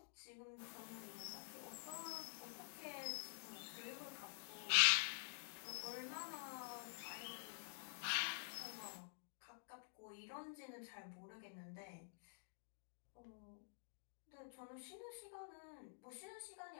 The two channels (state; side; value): silent; right; digital silence